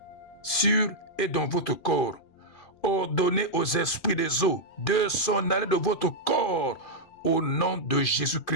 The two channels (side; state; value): right; late; 2.5 ms